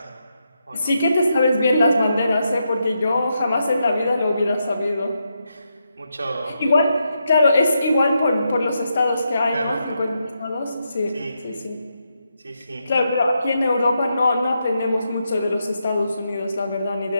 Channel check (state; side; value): inverted; both; correlation -0.83